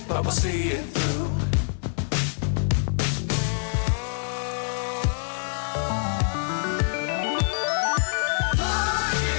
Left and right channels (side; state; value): right; silent; 61 dB below the other